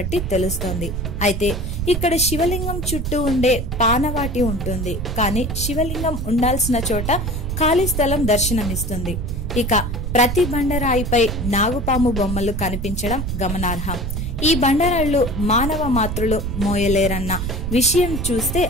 తెలుస్తోంది. అయితే ఇక్కడ శివలింగం చుట్టూ ఉండే పానవాటి ఉంటుంది. కానీ శివలింగం ఉండాల్సిన చోట ఖాళీ స్థలం దర్శనమిస్తుంది. ఇక ప్రతి బండరాయిపై నాగుపాము బొమ్మలు కనిపించడం గమనార్హం. ఈ బండరాళ్లు మానవ మాతృలు మోయలేరన్న విషయం చూస్తే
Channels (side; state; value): right; noise; rumble, 4 dB below the sound